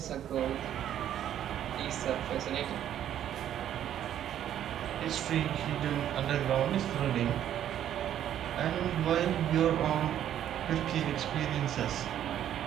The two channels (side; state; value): left; quieter; 10.8 dB